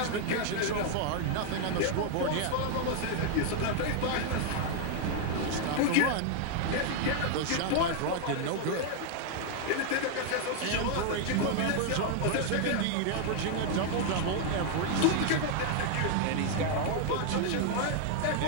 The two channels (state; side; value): different; both; correlation 0.00